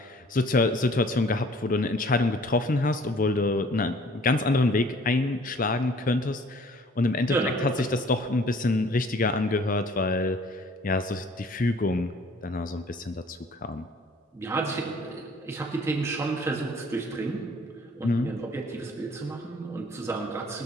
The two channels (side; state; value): both; normal; correlation 0.54